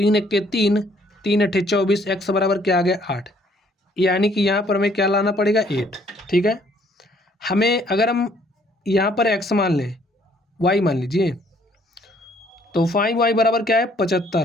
1 3, 3 8 24, x बराबर क्या आ गया? 8। यानी कि यहाँ पर हमें क्या लाना पड़ेगा? 8। ठीक है, हमें अगर हम यहाँ पर x मान लें, y मान लीजिए, तो 5y बराबर क्या है?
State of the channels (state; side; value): normal; both; correlation 0.63